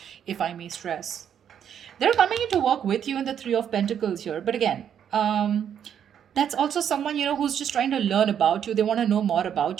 if I may stress. They're coming in to work with you in the Three of Pentacles here. But again, that's also someone, who's just trying to learn about you. They want to know more about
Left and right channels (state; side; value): quieter; left; 8.9 dB